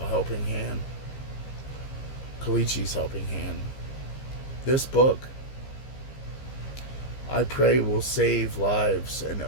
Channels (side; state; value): right; late; 15 ms